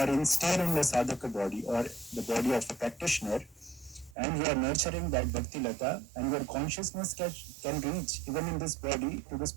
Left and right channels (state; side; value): drops out; left; at 4.2 s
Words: still in the sadhaka body or the body of a practitioner, and you are nurturing that Bhakti Lata, and your consciousness can reach even in this body to the